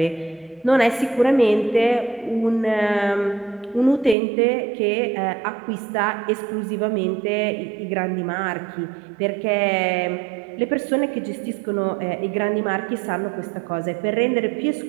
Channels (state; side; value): drops out; left; at 4.2 s